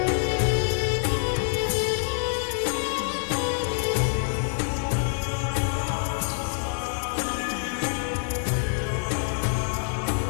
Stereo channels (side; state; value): right; silent; 61 dB below the other